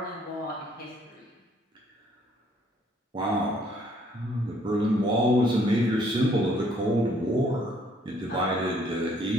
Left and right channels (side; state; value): both; normal; correlation 0.64